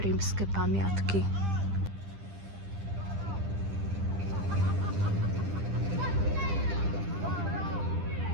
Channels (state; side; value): late; left; 10 ms